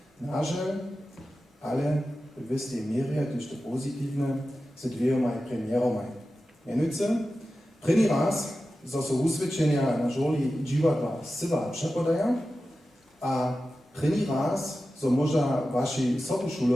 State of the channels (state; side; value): normal; both; correlation 0.93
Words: naże, ale w wystej mierze, też to pozytywne, z dwiema premierami. Mianowicie, první raz, zo so usvědčenja na żoli Dziwadła syva przepodaja, a první raz, zo možda vaši